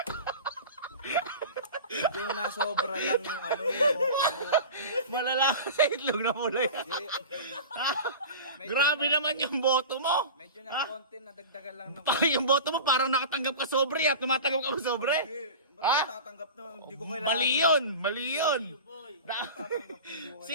Medyo nasobra lang yung ano yung boto mo. Malala ka sa itlog na pula yan. Ha? Grabe naman yung boto mo. Medyo na konti nadagdagan lang ng Yung boto mo parang nakatanggap ka sobre at tumatanggap ka sa sobre. Ha? Ha? Tatanggap na, hindi ko kailangan. Mali yun! Mali yun! Tatanggap na, hindi ko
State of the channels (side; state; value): both; inverted; correlation -0.33